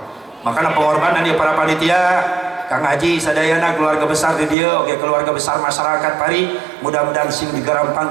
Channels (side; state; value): left; drops out; at 4.5 s